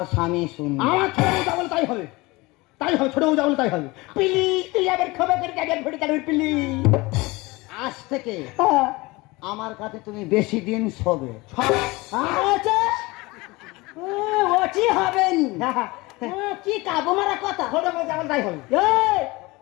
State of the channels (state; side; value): quieter; right; 22.7 dB